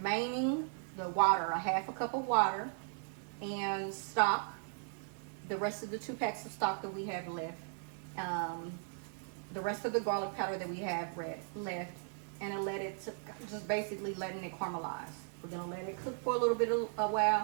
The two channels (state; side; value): silent; left; 53 dB below the other